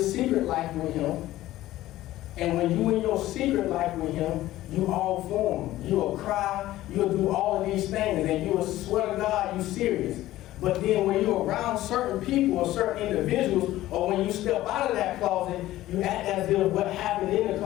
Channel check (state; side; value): quieter; right; 15.4 dB